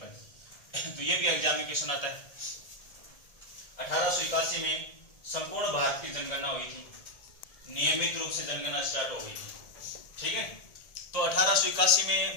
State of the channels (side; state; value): right; late; 1.7 ms